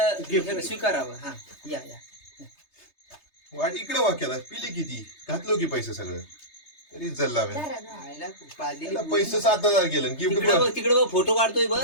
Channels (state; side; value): late; right; 3.3 ms